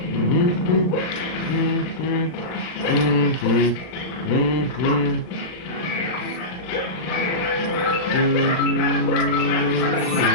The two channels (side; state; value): right; late; 39 ms